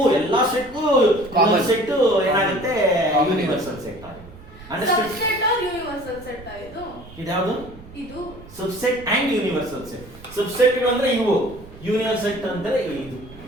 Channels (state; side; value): noise; right; rumble, 19 dB below the sound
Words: ಸೆಟ್ಗೂ Common. ಸೆಟ್ ಏನಾಗುತ್ತೆ? ಯೂನಿವರ್ಸಲ್ ಸೆಟ್ ಆಗುತ್ತೆ. Understand? subset or universal set ಇದು? ಇದ್ಯಾವುದು? ಇದು subset and universal set. Subset ಅಂದ್ರೆ ಇವು, ಯೂನಿವರ್ಸಲ್ ಸೆಟ್ ಅಂದ್ರೆ ಇದು.